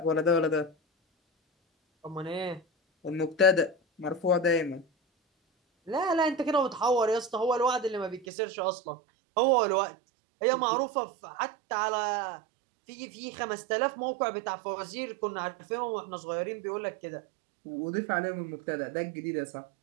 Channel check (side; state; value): left; drops out; at 8.2 s